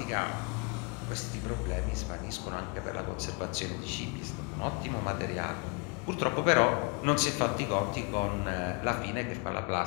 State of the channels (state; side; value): quieter; right; 31.5 dB